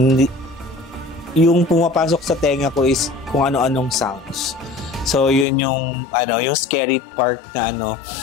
yung pumapasok sa tenga ko is kung ano-anong sounds. So, yun yung scary part na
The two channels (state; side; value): drops out; right; at 5.5 s